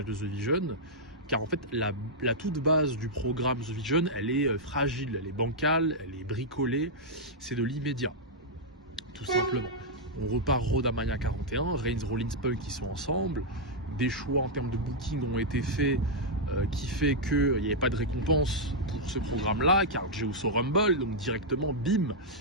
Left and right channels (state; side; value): normal; both; correlation -0.06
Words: de The Vision, car en fait la toute base du programme The Vision, elle est fragile, elle est bancale, elle est bricolée, c'est de l'immédiat, tout simplement. On repart Road à Mania 41, Reigns, Rollins, Punk qui sont ensemble, des choix en termes de booking ont été faits qui fait qu'il n'y avait pas de récompense pour ce programme-là, car Zeus au Rumble, donc directement, bim,